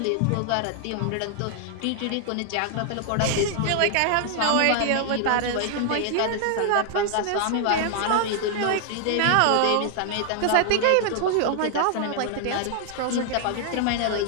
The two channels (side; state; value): both; different; correlation 0.00